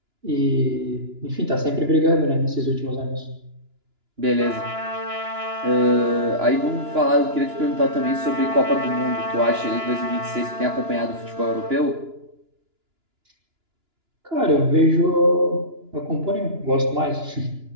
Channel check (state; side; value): late; left; 2.9 ms